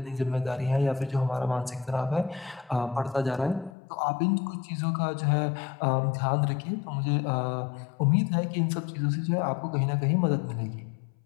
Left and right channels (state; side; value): drops out; right; at 3.7 s